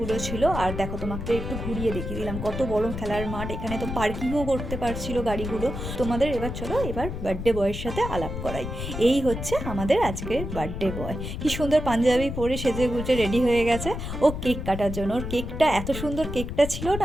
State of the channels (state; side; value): noise; left; rumble, 6 dB below the sound